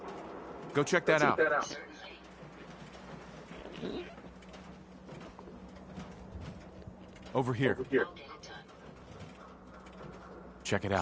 Go check that out. Certainly. Over here. I'll get it done. Check it out.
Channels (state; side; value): identical; both; correlation 1.00